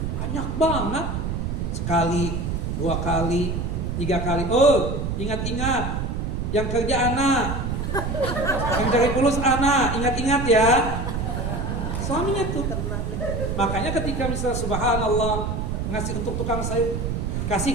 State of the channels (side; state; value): right; noise; rumble, 2 dB below the sound